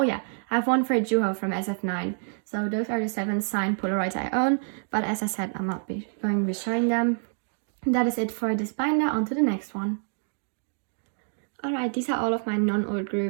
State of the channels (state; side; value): silent; left; digital silence